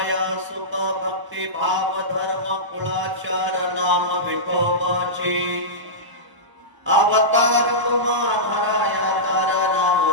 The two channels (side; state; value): left; late; 1.0 ms